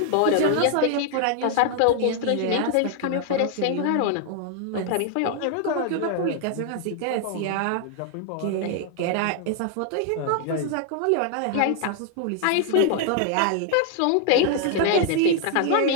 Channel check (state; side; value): different; both; correlation 0.00